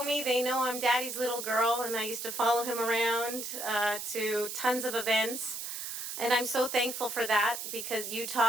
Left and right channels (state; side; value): noise; right; hiss, 6 dB below the sound